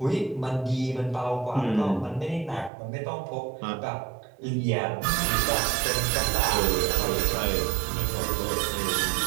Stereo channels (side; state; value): left; drops out; at 2.7 s